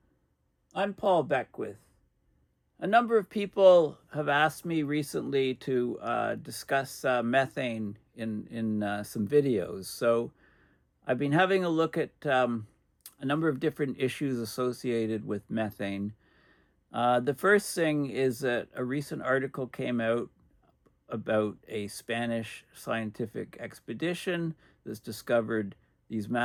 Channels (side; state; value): both; identical; correlation 1.00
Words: I'm Paul Beckwith. A number of people have asked me recently to discuss methane in some videos. So I've been having a look at a number of different issues associated with methane. The first thing is that a recent article came out about a Spanish scientific expedition that's discovered these